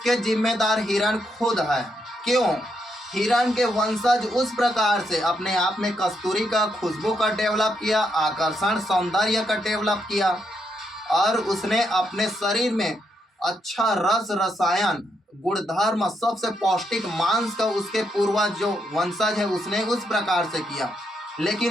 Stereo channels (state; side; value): normal; both; correlation 0.79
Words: जिम्मेदार हिरण खुद है। क्यों? हिरण के वंशज उस प्रकार से अपने आप में कस्तूरी का खुशबू का डेवलप किया, आकर्षण सौंदर्य का डेवलप किया, और उसने अपने शरीर में अच्छा रस रसायन गुणधर्म सबसे पौष्टिक मांस का उसके पूर्वज जो वंशज है उसने उस प्रकार से किया।